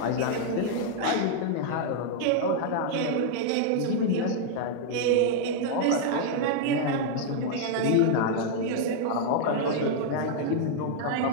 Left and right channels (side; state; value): both; different; correlation -0.01